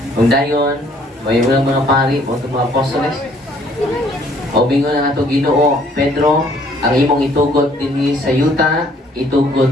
kung dayon, may mga pari o mga apostoles. O bingon ang ato Ginoo, Pedro, ang imong itugot dinhi sa yuta, itugot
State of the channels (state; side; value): normal; both; correlation 0.61